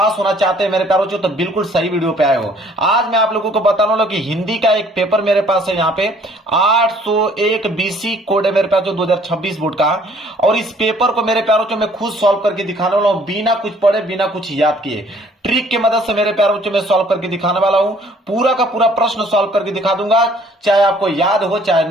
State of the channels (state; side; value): normal; both; correlation 0.59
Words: होना चाहते हैं मेरे प्यारों चो, तो बिल्कुल सही वीडियो पे आए हो। आज मैं आप लोगों को बताने वाला हूं कि हिंदी का एक पेपर मेरे पास है यहाँ पे 801 बीसी कोड है मेरे पास जो 2026 बोर्ड का। और इस पेपर को मेरे प्यारों चो मैं खुद सॉल्व करके दिखाने वाला हूं, बिना कुछ पढ़े बिना कुछ याद किए। ट्रिक की मदद से मेरे प्यारों बच्चों में सॉल्व करके दिखाने वाला हूं। पूरा का पूरा प्रश्न सॉल्व करके दिखा दूंगा, चाहे आपको याद हो चाहे